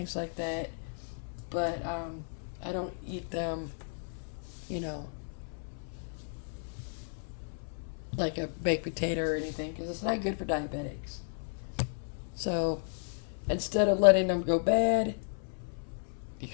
like that. But I don't eat them, like a baked potato or anything, because it's not good for diabetics. So instead of letting them go bad, you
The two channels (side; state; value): right; silent; 55 dB below the other